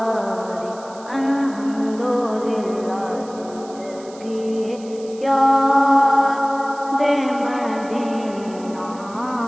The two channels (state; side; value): noise; right; hiss, 22 dB below the sound